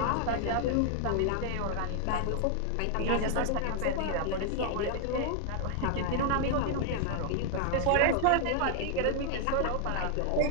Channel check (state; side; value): different; both; correlation 0.00